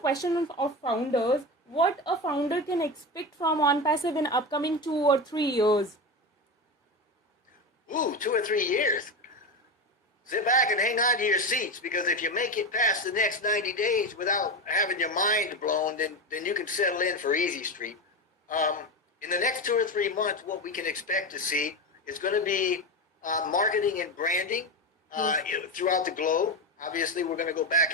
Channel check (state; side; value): normal; both; correlation 0.19